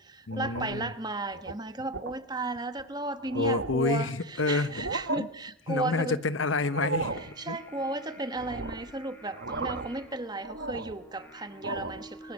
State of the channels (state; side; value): normal; both; correlation 0.16